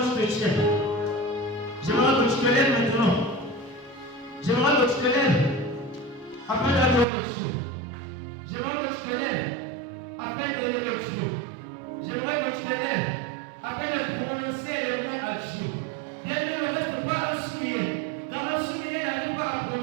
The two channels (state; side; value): drops out; left; at 7.1 s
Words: tu te tiens. J'aimerais que tu te lèves maintenant. J'aimerais que tu te lèves afin d'adorer Dieu. J'aimerais que tu te lèves afin d'élever Dieu. J'aimerais que tu te lèves afin de prononcer les mots à Dieu. Bien aimé, ne reste pas un souillé. Car un souillé n'arrive pas à